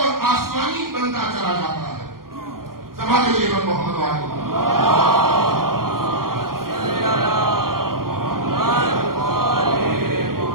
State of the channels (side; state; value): left; late; 0.92 ms